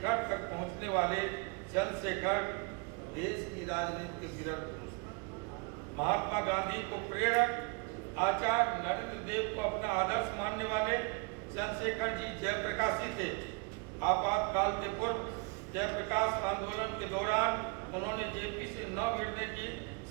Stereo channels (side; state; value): left; quieter; 30.6 dB